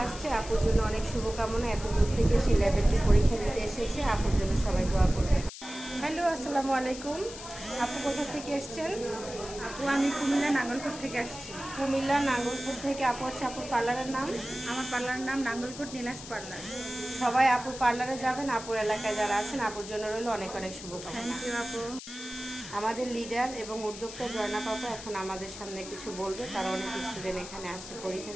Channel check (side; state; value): left; noise; hiss, 12 dB below the sound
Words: আসছে, আপুর জন্য অনেক শুভকামনা। এত দূর থেকে সে লেভেল 2 পরীক্ষা দিতে এসেছে, আপুর জন্য সবাই দোয়া করবে। হ্যালো, আসসালামু আলাইকুম। আপু কোথা থেকে এসছেন? আপু আমি কুমিল্লা নাঙ্গলকোট থেকে আসছি। কুমিল্লা নাঙ্গলকোট থেকে আপু আসছে। আপুর পার্লারের নাম? আমার পার্লারের নাম নাঙ্গলকোট নীলাস পার্লার। সবাই আপুর পার্লারে যাবেন। আপুর এলাকায় যারা আছেন আপুর জন্য রইল অনেক অনেক শুভকামনা। থ্যাংক ইউ আপু। আমাদের লিডার এবং উদ্যোক্তা জয়না পাপা এখন আমাদের সামনে কিছু বলবে। তারা অনেক স্টুডেন্ট এখানে আসছে পরীক্ষা